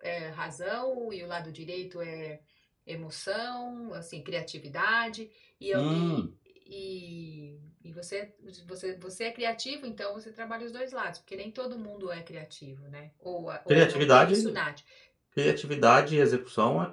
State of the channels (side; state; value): both; identical; correlation 1.00